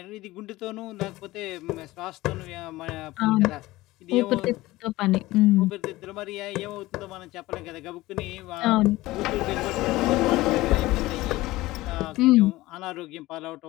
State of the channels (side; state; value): right; quieter; 18.4 dB